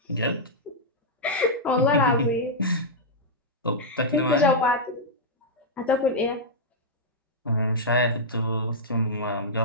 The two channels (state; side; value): normal; both; correlation -0.07